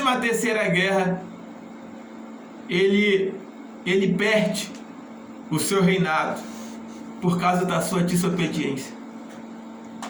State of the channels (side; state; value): both; identical; correlation 1.00